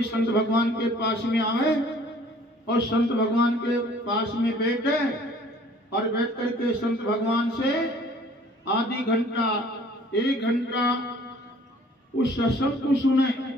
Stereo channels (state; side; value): normal; both; correlation 0.54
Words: संत भगवान के पास में आए और संत भगवान के पास में बैठे और बैठ करके संत भगवान से आधी घंटा 1 घंटा उस सत्संग